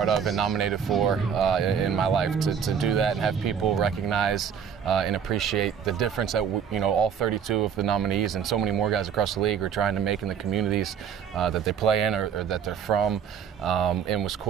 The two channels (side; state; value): left; quieter; 7.6 dB